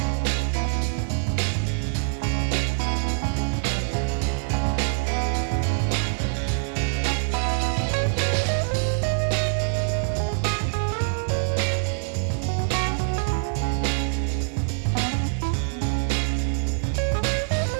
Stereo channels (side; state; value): left; silent; digital silence